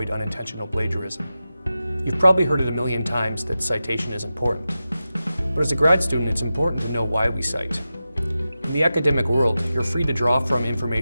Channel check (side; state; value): both; inverted; correlation -0.93